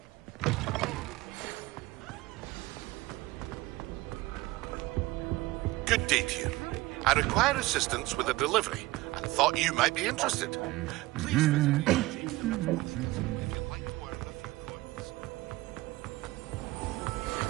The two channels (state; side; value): quieter; left; 19.5 dB